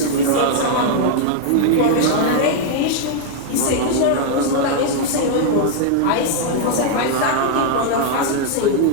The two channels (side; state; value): both; different; correlation 0.00